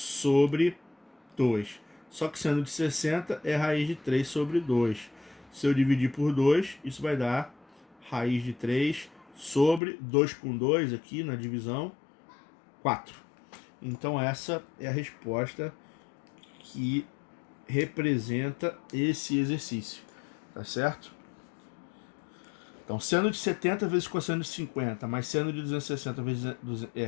2. Só que seno de 60 é raiz de 3 sobre 2. Se eu dividir por 2, isso vai dar raiz de 3 sobre 2 com 2 aqui na divisão, 4. Então essa é a resposta que representa esse exercício, tá certo? Então, seno de 70 vezes cosseno de 50, mais seno de 260 vezes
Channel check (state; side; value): drops out; right; at 9.8 s